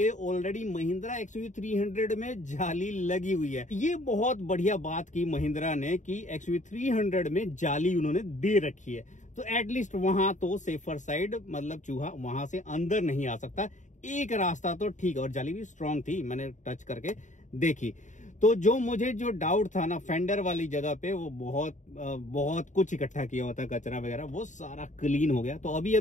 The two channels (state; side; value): late; right; 0.36 ms